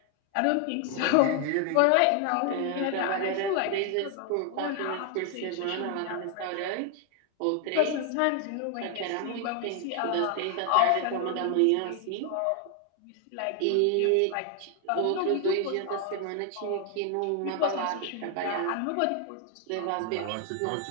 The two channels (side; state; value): both; different; correlation 0.00